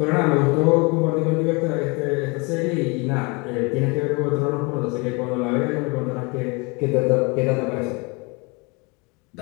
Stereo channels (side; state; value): right; quieter; 28.3 dB